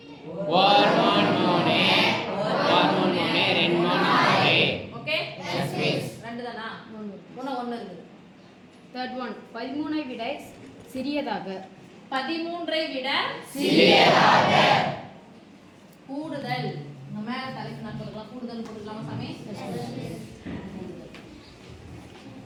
இருக்குது. Third one 13 விட சிறியதாக. 13 விட சிறியதாக. கூடுதல். இந்த மேல தலைப்பு நான் போட்டுக்கலாம். கூடுதல் போட்டுக்கலாமா சாமி?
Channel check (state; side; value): identical; both; correlation 1.00